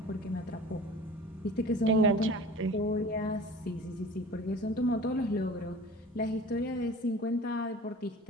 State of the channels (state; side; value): normal; both; correlation 0.41